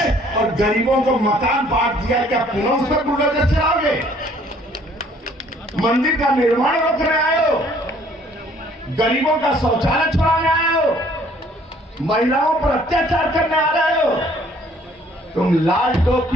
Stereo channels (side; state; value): both; normal; correlation 0.59